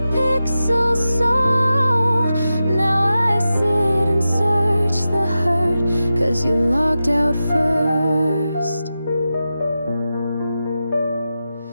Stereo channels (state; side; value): inverted; both; correlation -0.92